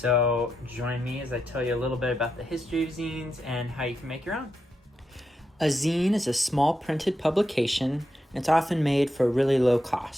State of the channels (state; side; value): normal; both; correlation 0.85